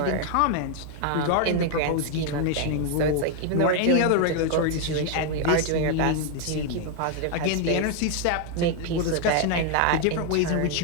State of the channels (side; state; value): both; different; correlation 0.00